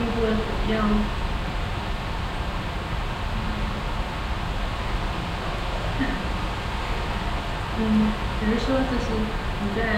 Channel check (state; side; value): identical; both; correlation 1.00